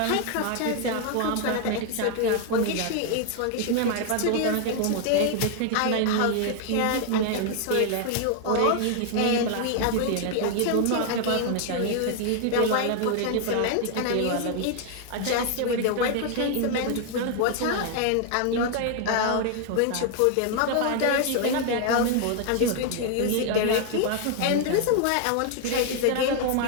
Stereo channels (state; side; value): different; both; correlation 0.00